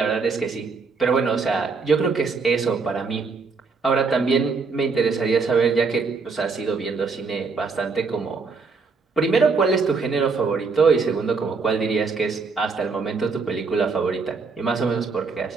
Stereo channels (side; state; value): left; quieter; 4.6 dB